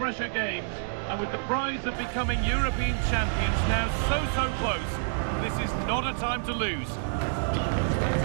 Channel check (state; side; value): silent; left; digital silence